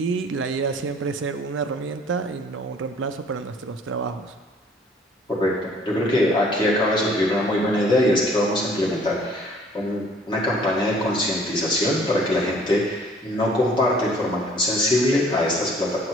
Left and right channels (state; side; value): normal; both; correlation 0.56